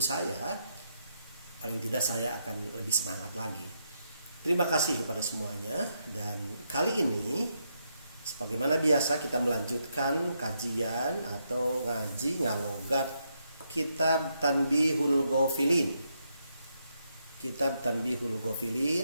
saya, paling tidak saya akan lebih semangat lagi. Terima kasih kepada semuanya. Dan kali ini sebagaimana biasa kita melanjutkan kajian atau ngaji ngalogat Kitab Tanbihul Ghafilin. Kitab Tanbihul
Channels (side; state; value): both; inverted; correlation -0.80